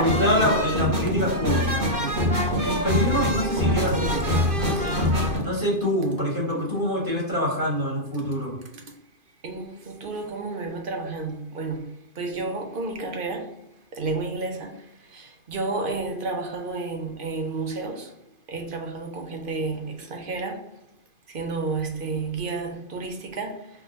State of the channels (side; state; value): left; late; 2.5 ms